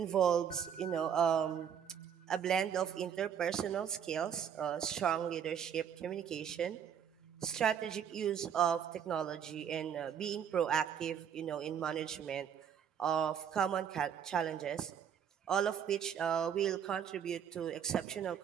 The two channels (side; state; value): left; quieter; 8.3 dB